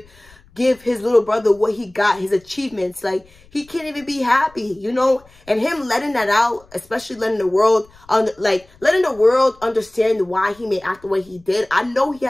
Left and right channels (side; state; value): left; noise; rumble, 28 dB below the sound